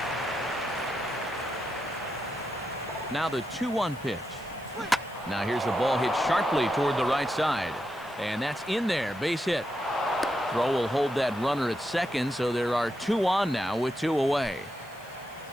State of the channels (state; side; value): noise; left; hiss, 25 dB below the sound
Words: Now the 2-1 pitch. Now here's a ball hit sharply toward the right side. And that's in there, base hit. Throw will hold that runner at second, so there are 2 on now with 2 away.